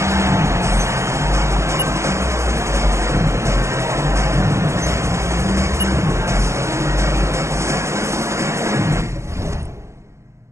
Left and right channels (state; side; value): late; left; 0.14 ms